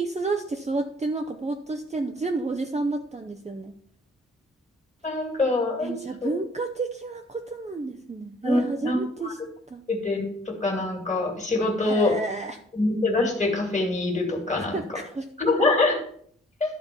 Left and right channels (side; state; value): both; normal; correlation 0.56